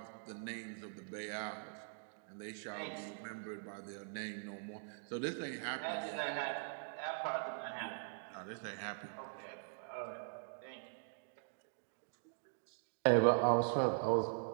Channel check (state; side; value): silent; left; digital silence